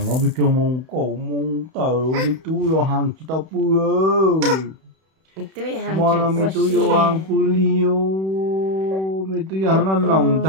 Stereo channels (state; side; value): late; left; 31 ms